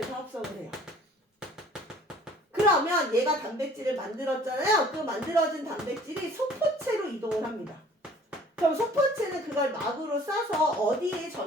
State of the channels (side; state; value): both; normal; correlation 0.52